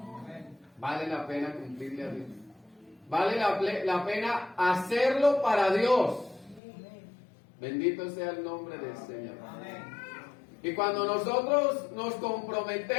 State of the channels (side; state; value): right; drops out; at 6.6 s